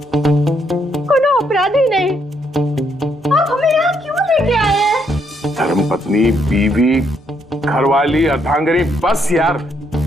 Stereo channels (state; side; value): normal; both; correlation 0.74